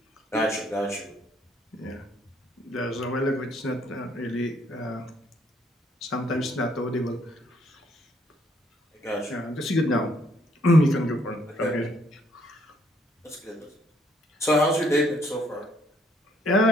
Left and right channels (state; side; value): normal; both; correlation 0.68